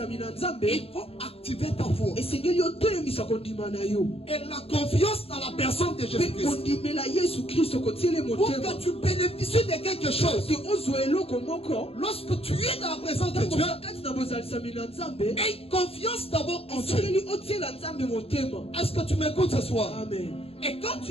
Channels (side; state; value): right; late; 0.28 ms